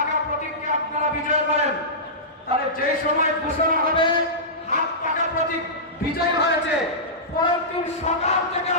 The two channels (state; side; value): normal; both; correlation -0.17